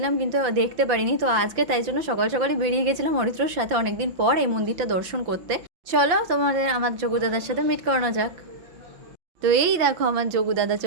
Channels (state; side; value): late; left; 5.8 ms